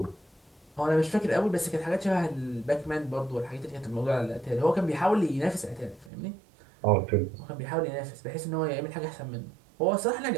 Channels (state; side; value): drops out; left; at 6.1 s